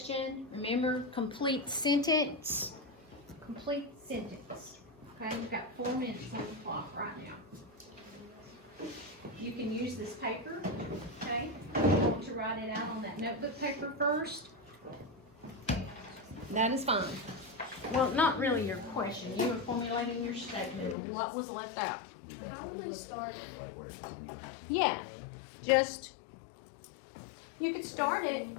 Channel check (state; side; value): drops out; right; at 21.0 s